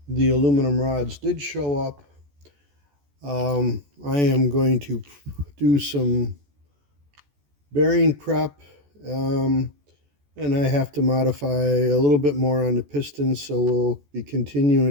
The aluminum rods did show up. I am going to do some bearing prep, and I have to modify a little bit more on the pistons, so we'll be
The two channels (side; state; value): left; late; 14 ms